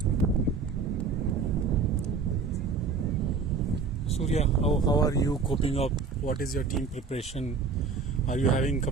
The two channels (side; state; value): left; quieter; 5.0 dB